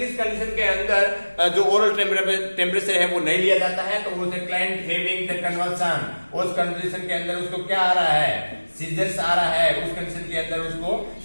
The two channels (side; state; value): both; inverted; correlation -1.00